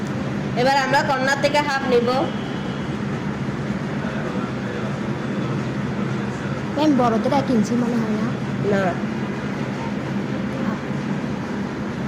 এবার আমরা কর্নার থেকে হাফ নিব। বড়দের 1 ইঞ্চি মনে হয় না? না,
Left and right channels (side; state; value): both; identical; correlation 1.00